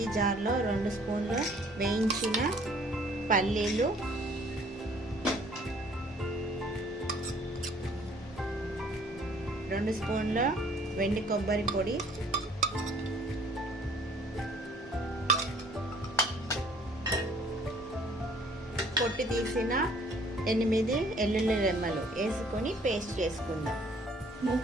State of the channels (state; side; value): normal; both; correlation 0.57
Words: జార్లో 2 స్పూన్లు వేయించిన పల్లీలు, 2 స్పూన్ల వెండి కొబ్బరి పొడి, పొట్టి తీసిన 8 వెల్లుల్లి రెమ్మలు వేసుకొని పేస్ట్ చేసుకుందాం.